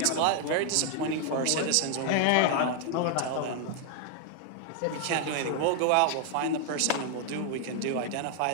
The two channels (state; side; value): different; both; correlation 0.00